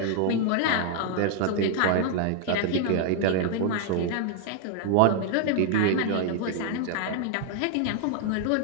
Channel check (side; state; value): both; different; correlation 0.00